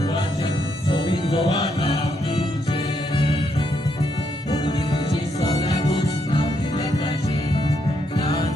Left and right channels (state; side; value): normal; both; correlation 0.77